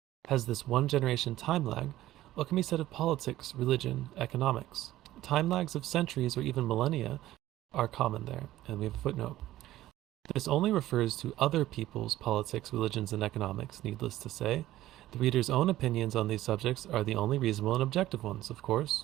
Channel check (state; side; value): quieter; left; 14.8 dB